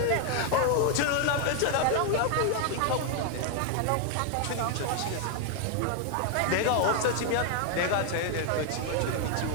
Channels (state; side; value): different; both; correlation 0.00